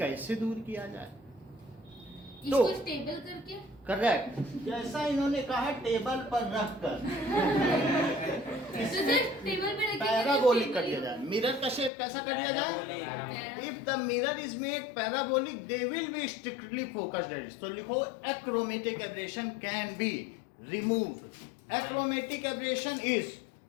दूर किया जाए। इसको स्टेबल करके करेक्ट, जैसा इन्होंने कहा टेबल पर रख कर तो सर टेबल पे रख के पैराबोलिक कर दिया जाए। मिरर का शेप कैसा कर दिया जाए? If the mirror is made parabolic they will be strictly focused edge. तो लिखो achromatic aberration can be removed. Achromatic aberration is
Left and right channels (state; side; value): drops out; right; at 11.9 s